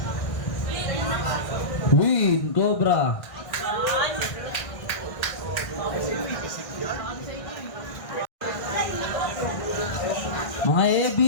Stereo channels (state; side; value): late; right; 1.6 ms